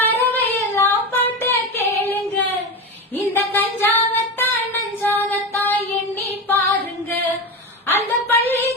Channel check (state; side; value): normal; both; correlation 0.21